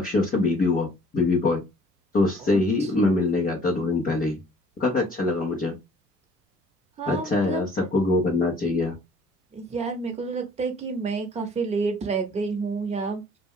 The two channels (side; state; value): both; normal; correlation 0.56